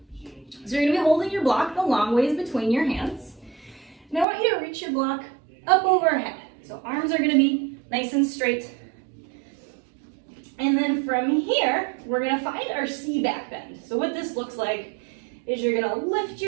So you're gonna be holding your block the long ways between your hands. And I want you to reach your block up overhead. So arms are gonna be nice and straight. And then from here, we're gonna find our C back bend. So what this looks like is you're gonna lift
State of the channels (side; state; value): left; drops out; at 4.2 s